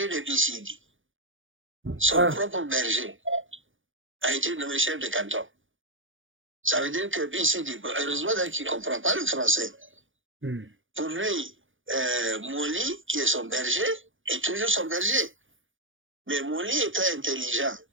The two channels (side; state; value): left; late; 0.57 ms